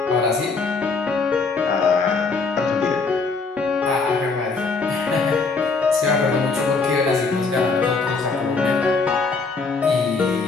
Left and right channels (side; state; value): right; quieter; 4.4 dB